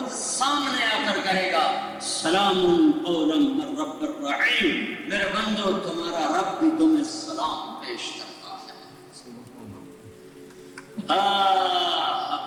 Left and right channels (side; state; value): both; identical; correlation 1.00